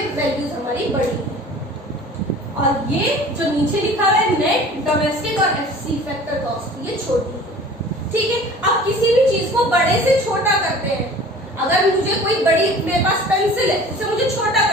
वैल्यूज हमारी बड़ी है, और ये जो नीचे लिखा हुआ है नेट डोमेस्टिक और एफसी फैक्टर कॉस्ट, ये छोटी है। ठीक है, अब किसी भी चीज को बड़े से छोटा करते हैं। अगर मुझे कोई बड़ी, मेरे पास पेंसिल है, उसे मुझे छोटा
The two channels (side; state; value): both; normal; correlation 0.44